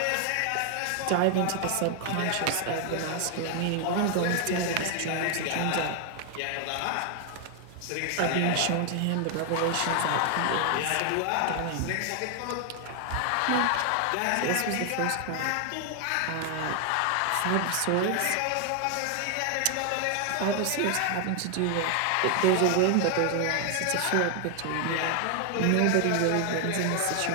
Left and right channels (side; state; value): both; different; correlation 0.00